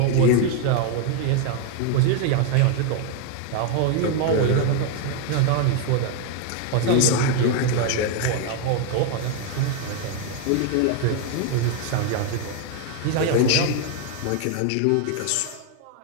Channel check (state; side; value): different; both; correlation 0.01